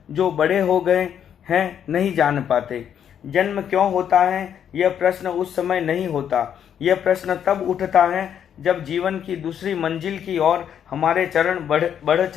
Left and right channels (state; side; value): quieter; right; 8.9 dB